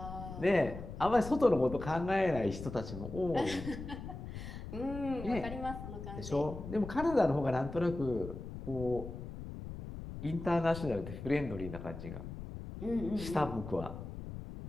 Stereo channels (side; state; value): left; noise; rumble, 9 dB below the sound